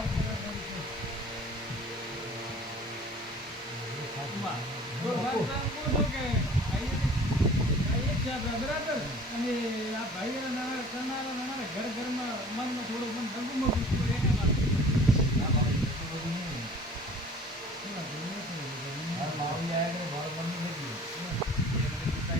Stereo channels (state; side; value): normal; both; correlation 0.47